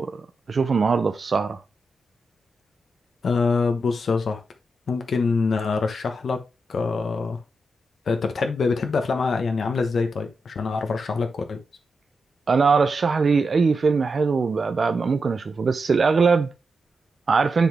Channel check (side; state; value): both; normal; correlation 0.87